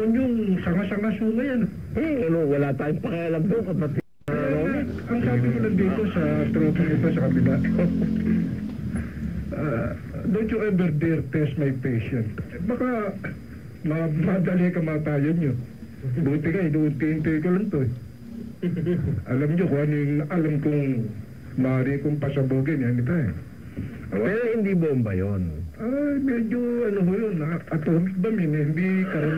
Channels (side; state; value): both; identical; correlation 1.00